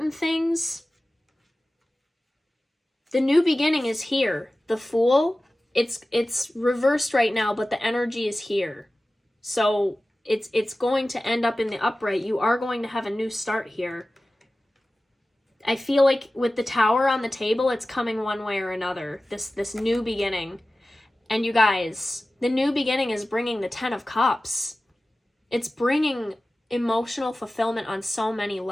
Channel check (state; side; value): normal; both; correlation 0.96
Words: things. The new beginning is here. The Fool, it's reversed right now, but the energy is here. So it's going to end up in the upright. You are going to have a new start here. I feel like with the Tower on the table, it's coming one way or another. This new beginning. And you guys, the new beginning is bringing the 10 of Cups. It's bringing emotional fulfillment on so many